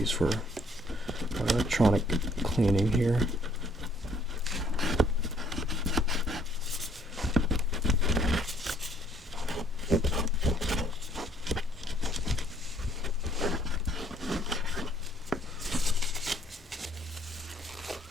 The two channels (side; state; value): both; normal; correlation 0.63